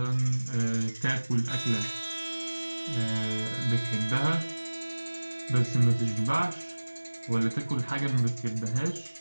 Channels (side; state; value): both; inverted; correlation -1.00